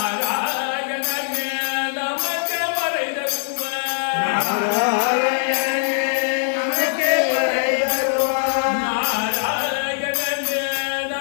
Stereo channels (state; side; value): silent; right; 65 dB below the other